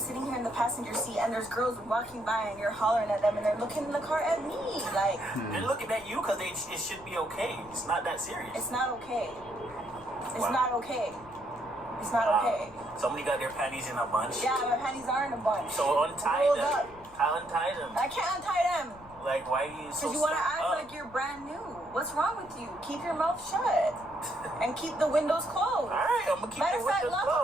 here in the passenger seat and there's girls walking by and you're hollering at them and they're looking in the car at me. Like, They're looking at you because it should be okay. It's not that serious. it's not okay. It's Wow. not okay. It's not okay. Somebody got their panties in a bunch. Yeah, my panties are in a bunch. So untie Rolled them. up. Untie them. I can't untie them. Like, why are you so Because you want to stuck act up? like you're brand new. What's wrong with you? Keep your mouth shut. And keep the windows closed. Alright, I'm gonna keep Matter the of fact, windows lock up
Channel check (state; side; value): noise; left; rumble, 23 dB below the sound